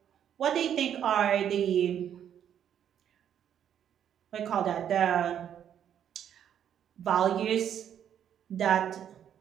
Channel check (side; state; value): left; quieter; 9.5 dB